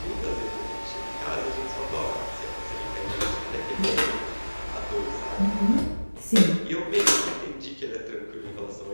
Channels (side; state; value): both; inverted; correlation -1.00